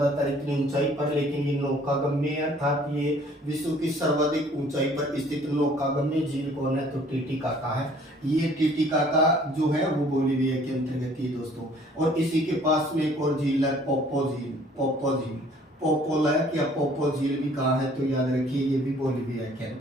इतनी ऊंचाई पर, लेकिन ये नौकागम्य अर्थात ये विश्व की सर्वाधिक ऊंचाई पर स्थित नौकागम्य झील कौन है? तो टीटीकाका है। ये टीटीकाका जो है वो बोलीविया के अंतर्गत ही दोस्तों। और इसी के पास में एक और झील है पोपो झील। पोपोलैक या पोपो झील भी कहाँ है? तो याद रखिए, ये भी बोलीविया के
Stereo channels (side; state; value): both; normal; correlation 0.56